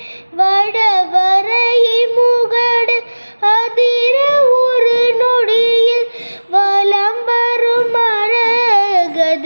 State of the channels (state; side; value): inverted; both; correlation -1.00